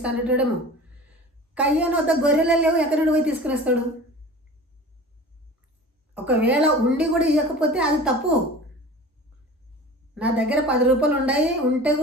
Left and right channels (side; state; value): both; normal; correlation 0.39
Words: అనేటోడేమో. కయ్యను వద్ద గొర్రెలు లేవు, ఎక్కడి నుండి పోయి తీసుకుని వస్తాడు? ఒకవేళ ఉండి కూడా ఇవ్వకపోతే అది తప్పు. నా దగ్గర 10 రూపాయలు ఉన్నాయి, ఉంటే